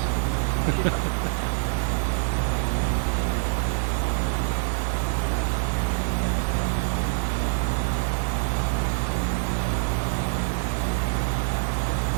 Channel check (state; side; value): silent; left; digital silence